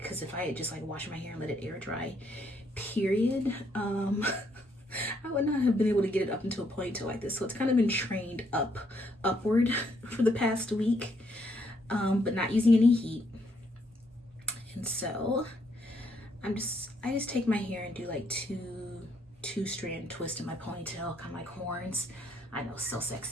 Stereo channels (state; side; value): normal; both; correlation 0.72